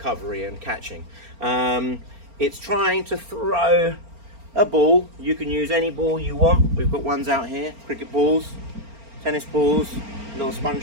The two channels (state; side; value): late; left; 4.4 ms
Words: and catching. It's trying to throw a ball. You can use any ball you want. We've got ones out here, cricket balls, tennis balls, little